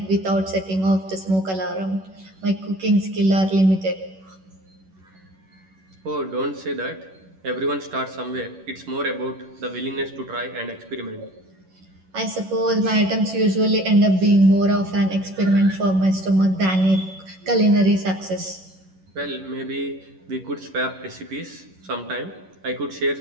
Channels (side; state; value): left; late; 11 ms